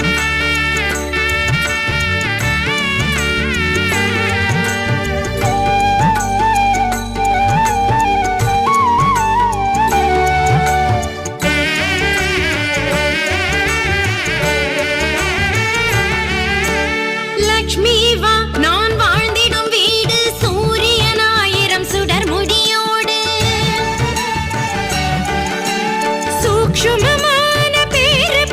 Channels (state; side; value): identical; both; correlation 1.00